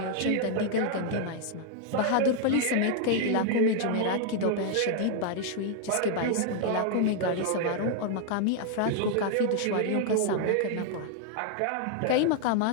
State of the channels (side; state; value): both; different; correlation 0.00